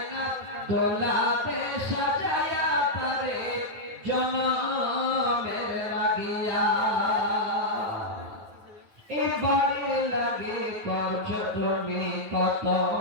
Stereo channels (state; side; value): late; left; 9.4 ms